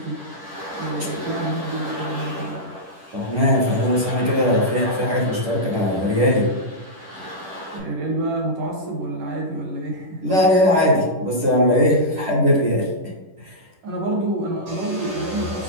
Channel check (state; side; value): late; left; 10 ms